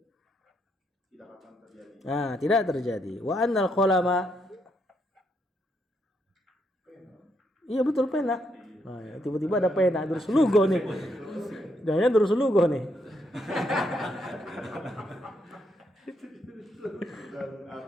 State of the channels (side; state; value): both; normal; correlation 0.77